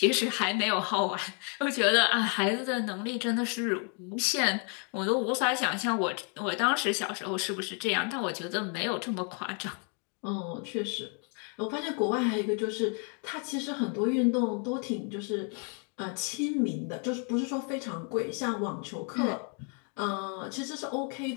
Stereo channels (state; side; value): quieter; right; 39.9 dB